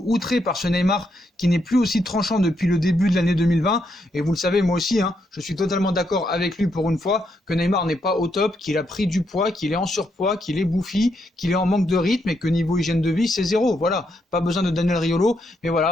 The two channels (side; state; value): both; normal; correlation 0.78